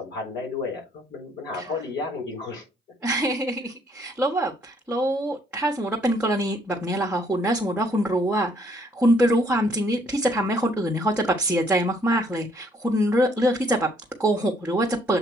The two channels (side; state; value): both; normal; correlation 0.66